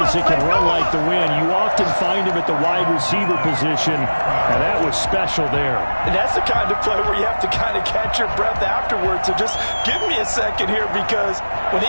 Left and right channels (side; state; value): both; inverted; correlation -1.00